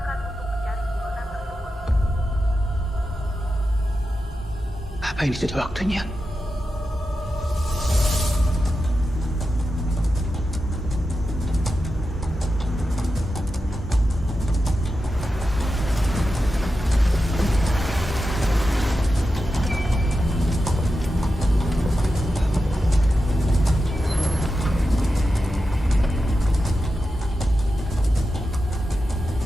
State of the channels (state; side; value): normal; both; correlation 0.90